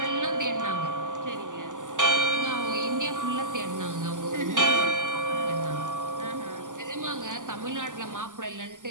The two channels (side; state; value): left; late; 0.87 ms